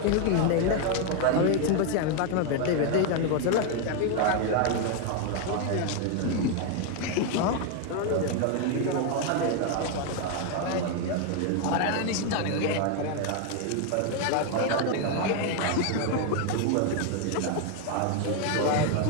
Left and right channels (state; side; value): different; both; correlation 0.01